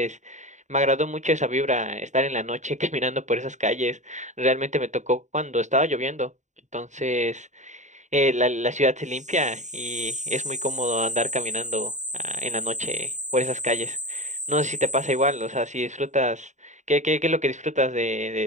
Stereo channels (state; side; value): late; left; 0.34 ms